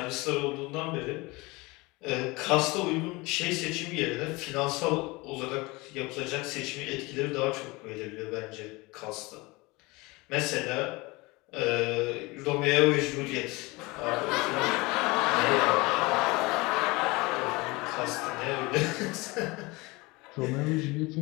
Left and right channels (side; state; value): right; quieter; 23.8 dB